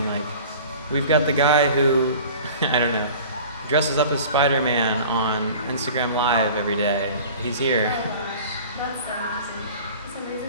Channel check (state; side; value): inverted; both; correlation -0.42